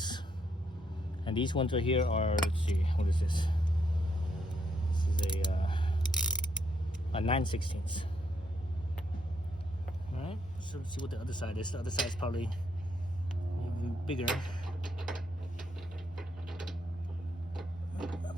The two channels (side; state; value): both; normal; correlation 0.75